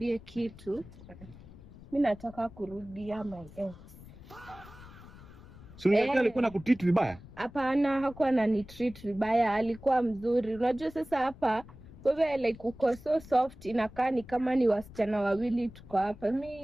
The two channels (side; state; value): left; noise; rumble, 19 dB below the sound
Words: kitu. Mimi nataka kurudia my ex. So alikuwa nakutreat vibaya? Hapana, hakuwa ananitreat vibaya, alikuwa mzuri. Unajua sasa hapa wewe like uko so soft, inakaa ni kama ni wasichana wawili tuko hapa. Mimi